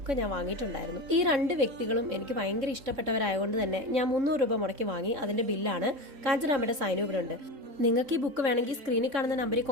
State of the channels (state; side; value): late; left; 3.7 ms